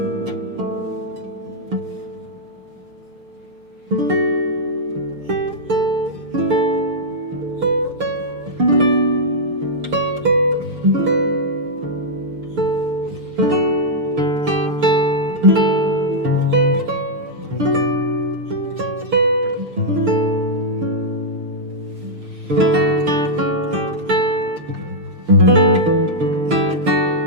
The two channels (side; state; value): left; late; 6.6 ms